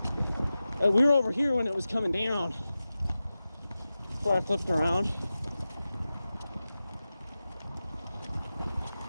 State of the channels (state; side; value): inverted; both; correlation -0.94